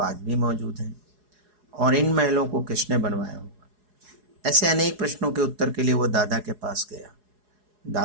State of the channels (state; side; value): late; left; 4.8 ms